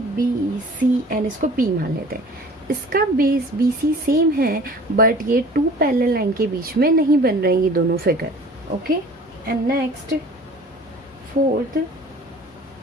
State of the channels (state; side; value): normal; both; correlation 0.46